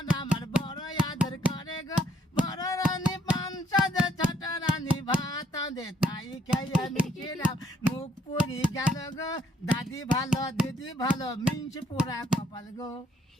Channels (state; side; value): normal; both; correlation 0.68